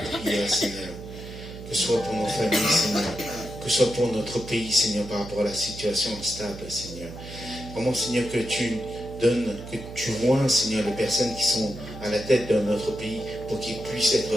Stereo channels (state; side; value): noise; right; hum, 12 dB below the sound